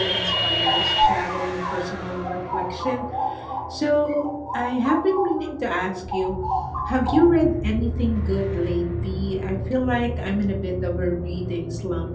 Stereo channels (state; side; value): identical; both; correlation 1.00